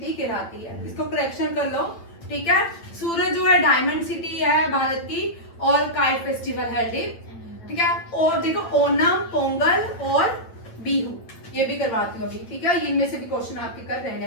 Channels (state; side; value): late; right; 8.9 ms